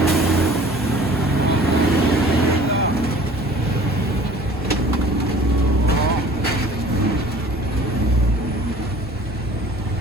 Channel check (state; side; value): normal; both; correlation 0.49